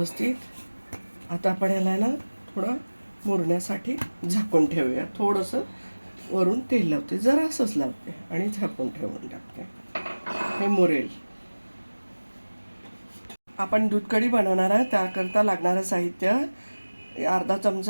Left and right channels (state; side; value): inverted; both; correlation -1.00